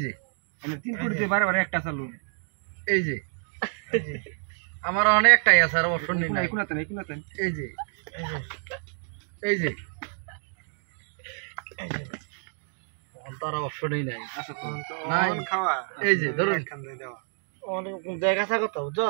যে আমি 3 কোটিতে বারে একটা চালু এই যে আমার অনেকটাই আছে আর অপশন নেই নাই কোনাতে নাই কোনাতে এই যে এই যে তার অপশনই নাই আচ্ছা তো নাই। খাওয়া এই যে ধরুন খান দেওয়া অনেক দেখা কথা বুঝছ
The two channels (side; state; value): left; silent; 56 dB below the other